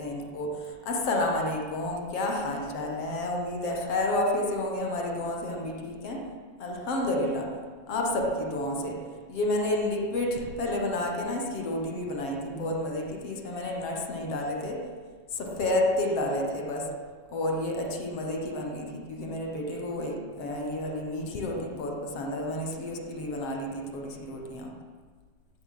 इनको। अस्सलाम वालेकुम, क्या हाल चाल है? उम्मीद है खैर वाफियत से होंगे। हमारी दुआओं से हम भी ठीक हैं अल्हम्दुलिल्लाह, आप सबकी दुआओं से। ये मैंने लिक्विड पहले बना के ना इसकी रोटी भी बनाई थी, बहुत मज़े की थी। इसमें मैंने नट्स नहीं डाले थे, सफ़ेद तिल डाले थे बस, और ये अच्छी मज़े की बन गई थी क्योंकि मेरे बेटे को ये वाली मीठी रोटी बहुत पसंद है, तो मैंने इसलिए उसके लिए बना ली थी थोड़ी सी रोटियाँ।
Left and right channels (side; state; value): right; late; 7.3 ms